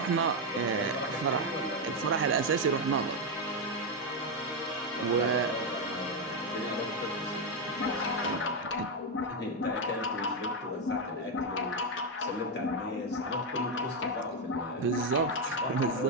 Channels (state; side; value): normal; both; correlation 0.05